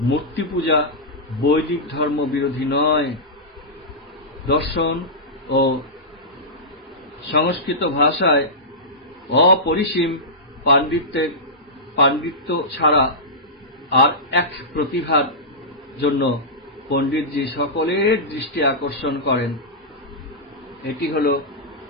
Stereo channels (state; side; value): normal; both; correlation -0.14